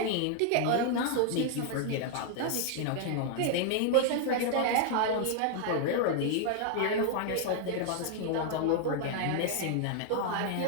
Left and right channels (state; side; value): different; both; correlation 0.00